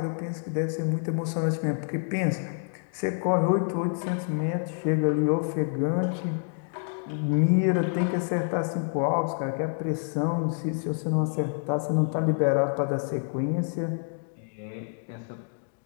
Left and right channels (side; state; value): right; silent; 56 dB below the other